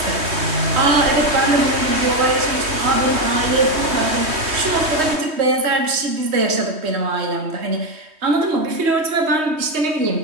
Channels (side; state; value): left; late; 3.2 ms